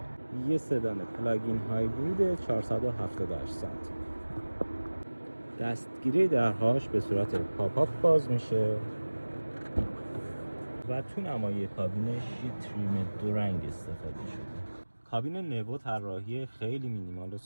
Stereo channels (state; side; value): inverted; both; correlation -1.00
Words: یه سدان پلاگین هایبرید 478 سانتی. دستگیره درهاش به صورت پاپ باز میشه و تو نمای کابینش یه تریم دو رنگ استفاده شده. کابین نوو طراحی خیلی مینیمال و